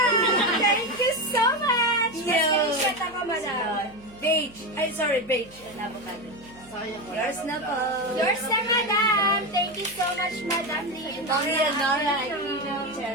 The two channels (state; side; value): noise; right; hum, 24 dB below the sound